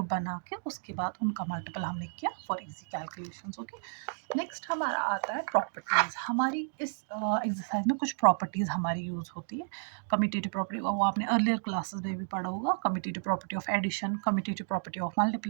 बना के उसके बाद उनका मल्टीपल हमने किया for easy calculations. Okay, next हमारा आता है प्रॉपर्टीज़। हमारी इस एक्सरसाइज में कुछ प्रॉपर्टीज़ हमारी यूज़ होती है। कम्यूटेटिव प्रॉपर्टी, वो आपने अर्लियर क्लासेस में भी पढ़ा होगा। Commutative property of addition, commutative property of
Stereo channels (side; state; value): left; silent; digital silence